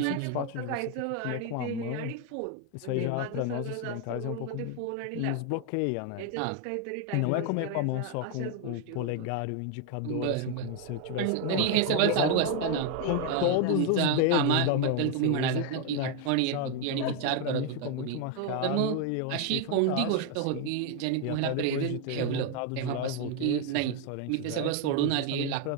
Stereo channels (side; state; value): both; different; correlation 0.01